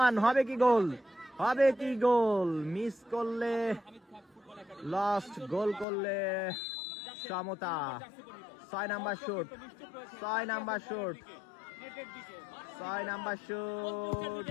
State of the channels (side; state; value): right; drops out; at 5.9 s